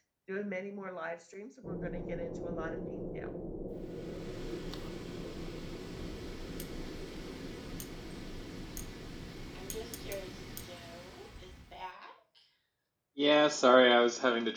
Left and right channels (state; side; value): identical; both; correlation 1.00